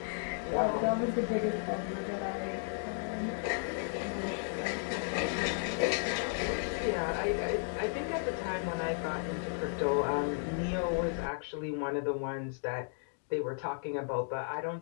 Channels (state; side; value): silent; right; 55 dB below the other